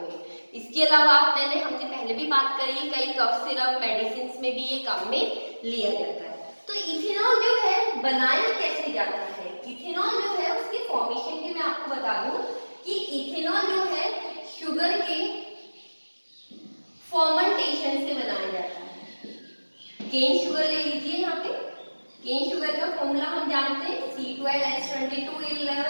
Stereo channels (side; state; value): both; inverted; correlation -1.00